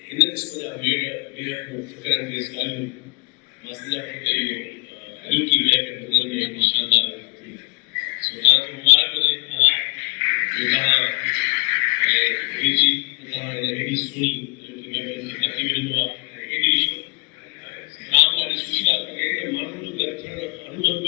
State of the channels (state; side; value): quieter; right; 35.7 dB